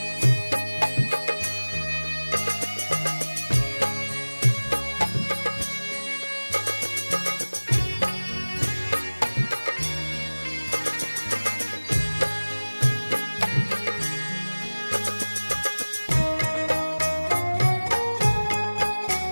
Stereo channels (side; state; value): both; inverted; correlation -1.00